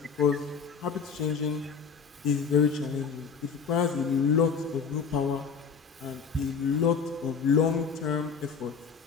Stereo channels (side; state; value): right; quieter; 6.0 dB